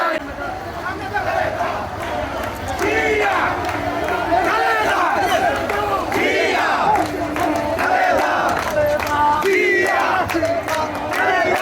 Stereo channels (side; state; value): both; identical; correlation 1.00